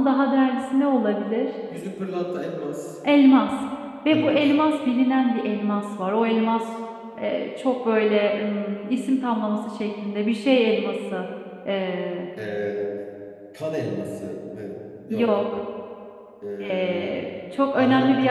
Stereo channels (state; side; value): identical; both; correlation 1.00